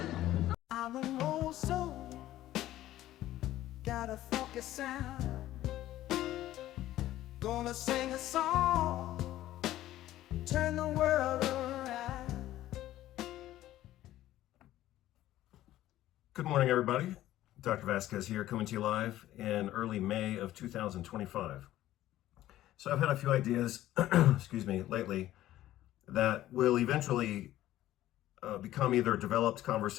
I'm an old soul, got a funky sound. Gonna sing a song, turn the world around. Good morning, everybody. Dr. Vasquez here, coming to you live in early May of 2025. So I've had a few ideas, excuse me, lately that will eventually become either developed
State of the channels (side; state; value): right; quieter; 14.2 dB